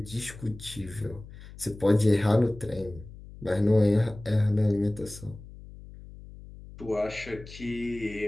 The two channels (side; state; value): left; noise; hum, 16 dB below the sound